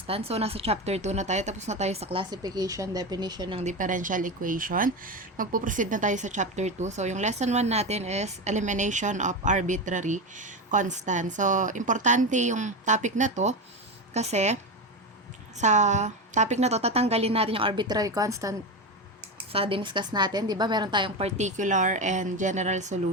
So, nasa chapter 2 na tayo. Tapos na tayo sa classification, definition ng differential equation. Magpuproceed na tayo sa chapter 2. So, yung lesson 1 natin is elimination of arbitrary constants. So, importante yung topic na to kasi sa topic na to, tatanggalin natin yung arbitrary constant sa diniscuss natin, di ba? Meron tayong particular and general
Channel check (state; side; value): normal; both; correlation 0.18